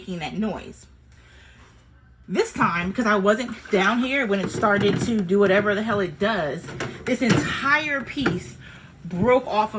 that noise. This time, because I wasn't down here when it started to do whatever the hell it does, this entire piece broke off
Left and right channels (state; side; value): identical; both; correlation 1.00